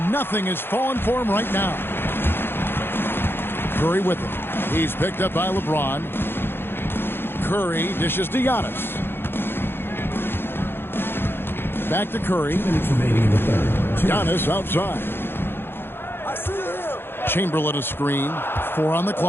nothing is falling for him right now. Curry with it. He's picked up by LeBron. Curry dishes to Giannis. Back to Curry. Giannis outside. Chamberlain a screen. 4 on the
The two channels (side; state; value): right; late; 0.10 ms